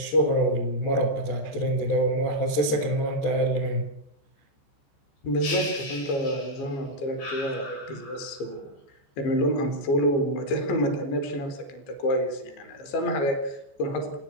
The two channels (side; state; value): right; late; 14 ms